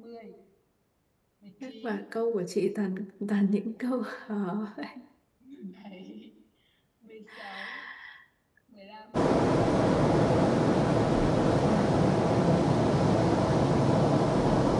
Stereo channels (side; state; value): both; identical; correlation 1.00